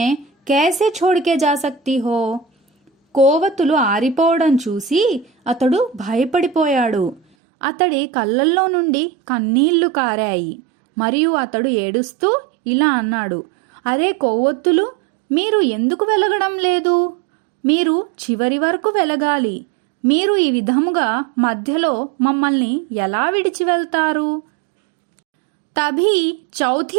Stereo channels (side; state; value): left; drops out; at 7.2 s